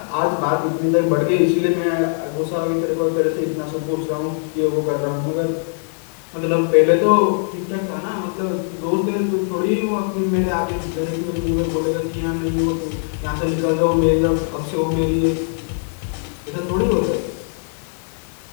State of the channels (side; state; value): right; silent; 65 dB below the other